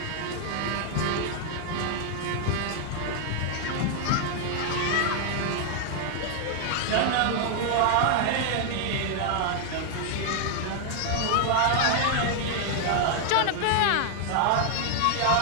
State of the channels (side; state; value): both; different; correlation 0.00